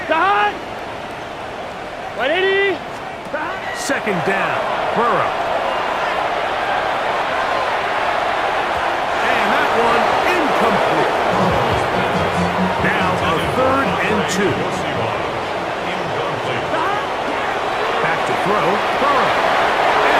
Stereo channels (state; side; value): identical; both; correlation 1.00